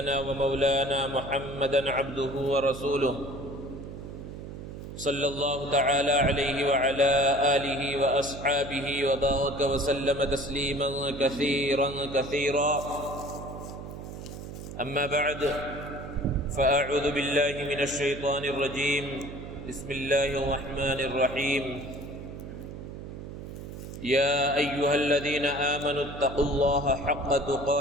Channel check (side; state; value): right; noise; hum, 10 dB below the sound